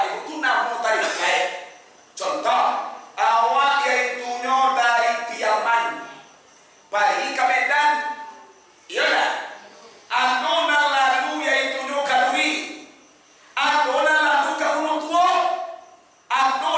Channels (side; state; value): both; identical; correlation 1.00